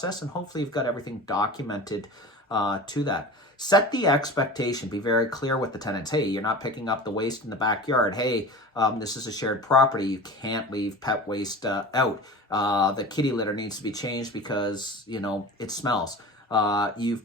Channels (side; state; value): both; normal; correlation 0.34